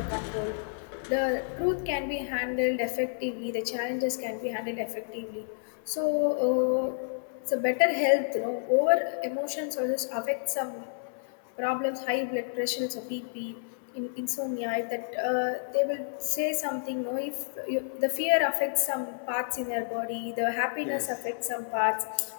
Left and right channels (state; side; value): silent; right; 58 dB below the other